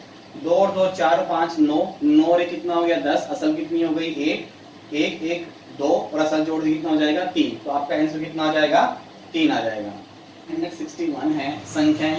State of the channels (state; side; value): identical; both; correlation 1.00